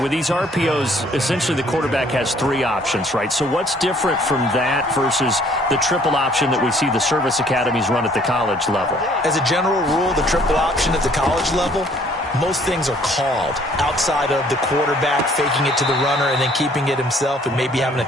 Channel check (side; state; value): both; normal; correlation 0.60